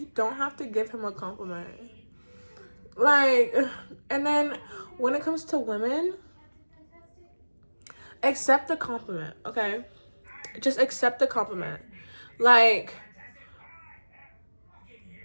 don't have to give him a compliment. Like, and then when it comes to women, accept the compliment, okay? Just accept the compliment. Like,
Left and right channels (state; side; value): inverted; both; correlation -1.00